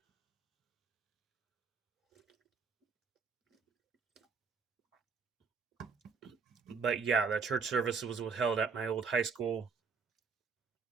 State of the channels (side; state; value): left; quieter; 5.3 dB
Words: But yeah, the church service was held at my old high school,